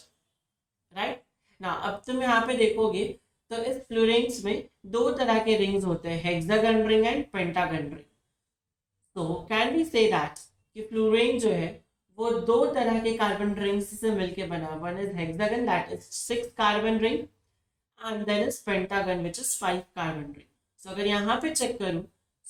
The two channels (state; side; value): identical; both; correlation 1.00